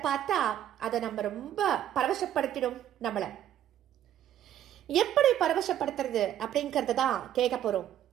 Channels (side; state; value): left; quieter; 11.2 dB